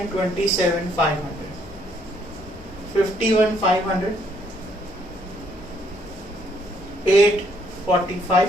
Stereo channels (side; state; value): both; normal; correlation 0.68